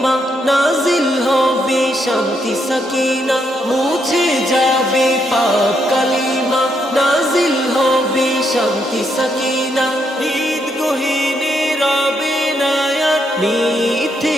নাজিল হবে শান্তি সাকিনা। মুছে যাবে পাপ কালিমা, নাজিল হবে শান্তি সাকিনা। ঈদ গহীনে রবে না আর মিথ্যে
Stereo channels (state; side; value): normal; both; correlation 0.77